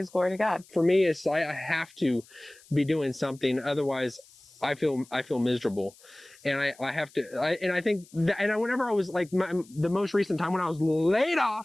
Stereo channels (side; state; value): left; noise; hiss, 26 dB below the sound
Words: glory to God. For me, it's I have to be doing something, otherwise I feel miserable, and I have to. I think that, and whenever I was like the most recent time when I was laid